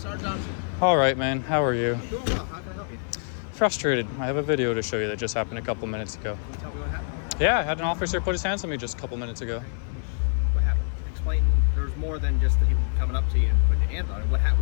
Johnson. Alright man, how are you? Doing well. How can I help you? Frustrated. I have a video to show you that just happened a couple minutes ago. Can you tell me what happened? Yeah, I had an officer put his hands on me just a couple minutes ago. What happened? Explain. There's more than just him coming up to you and putting your hands on it. What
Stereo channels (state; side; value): silent; right; 61 dB below the other